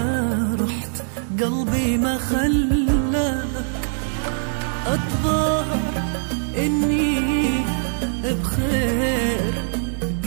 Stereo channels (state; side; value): silent; left; digital silence